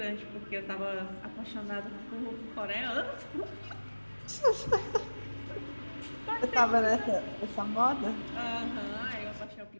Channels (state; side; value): inverted; both; correlation -1.00